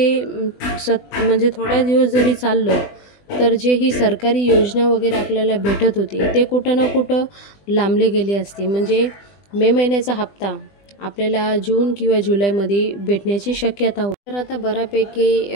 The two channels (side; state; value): right; late; 20 ms